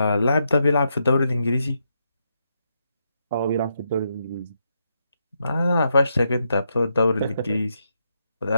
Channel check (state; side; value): inverted; both; correlation -0.81